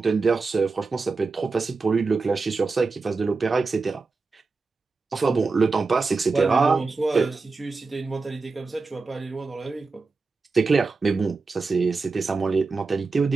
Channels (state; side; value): quieter; left; 4.2 dB